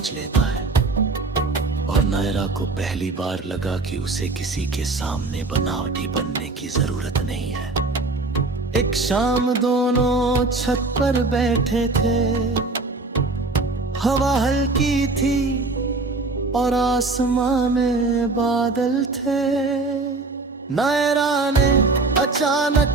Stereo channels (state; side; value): quieter; left; 3.5 dB